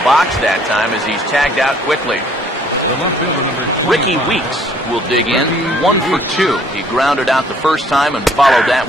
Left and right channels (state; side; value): normal; both; correlation 0.60